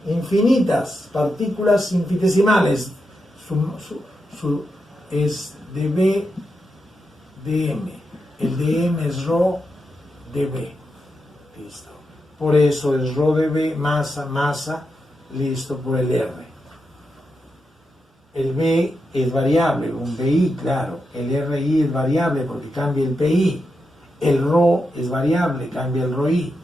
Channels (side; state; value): both; normal; correlation 0.86